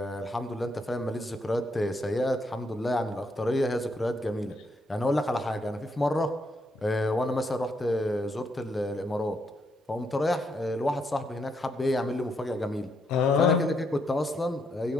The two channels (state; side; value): normal; both; correlation 0.77